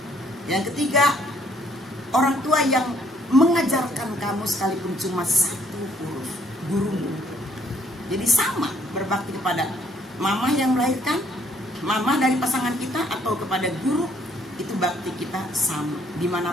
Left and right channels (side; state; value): both; normal; correlation 0.65